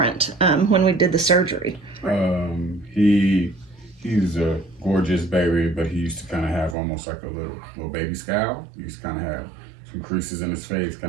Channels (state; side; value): drops out; left; at 6.8 s